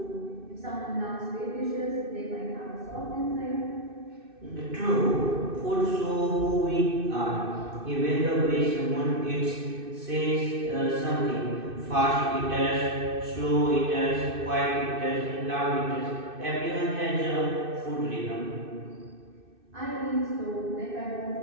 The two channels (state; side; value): late; left; 2.6 ms